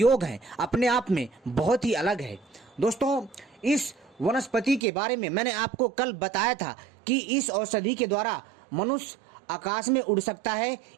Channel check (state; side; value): drops out; left; at 4.8 s